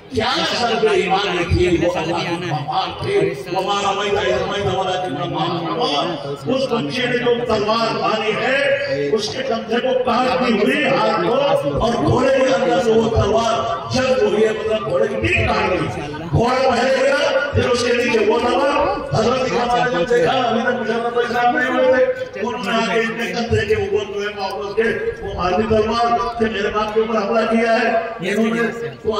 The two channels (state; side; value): identical; both; correlation 1.00